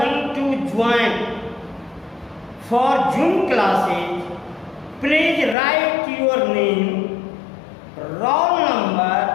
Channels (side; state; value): right; drops out; at 5.6 s